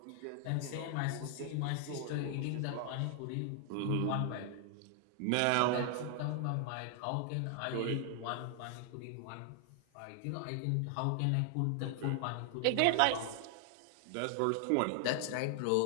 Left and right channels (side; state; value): both; different; correlation 0.00